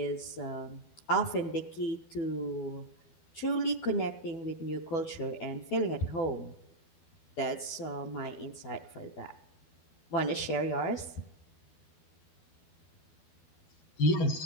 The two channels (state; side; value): late; right; 12 ms